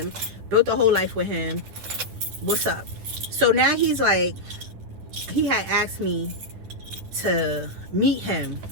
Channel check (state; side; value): late; left; 10 ms